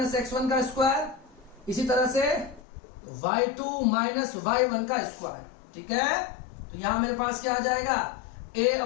x1 का स्क्वायर, इसी तरह से y2 माइनस y1 का स्क्वायर। ठीक है, तो यहां मेरे पास क्या आ जाएगा, a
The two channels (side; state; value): right; drops out; at 2.7 s